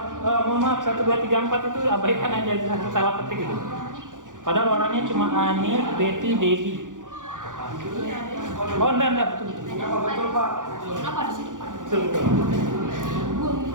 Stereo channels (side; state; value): left; late; 0.87 ms